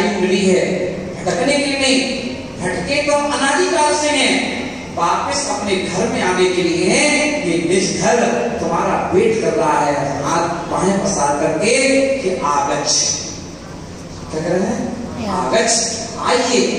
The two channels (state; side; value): identical; both; correlation 1.00